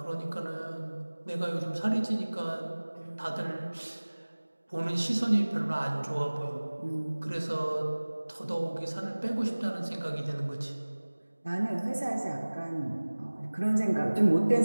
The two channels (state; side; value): inverted; both; correlation -1.00